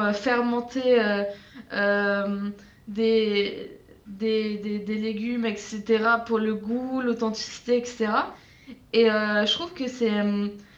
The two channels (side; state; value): both; identical; correlation 1.00